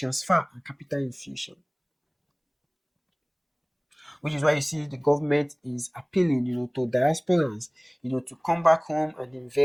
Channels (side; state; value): both; identical; correlation 1.00